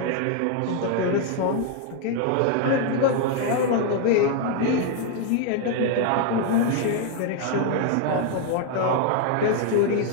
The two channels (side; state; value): both; different; correlation 0.00